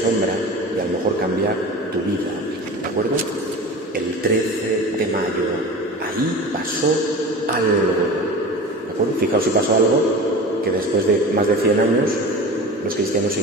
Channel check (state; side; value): normal; both; correlation 0.34